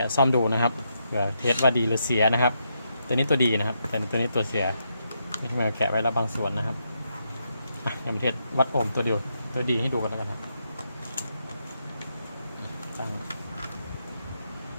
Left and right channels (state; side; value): inverted; both; correlation -0.80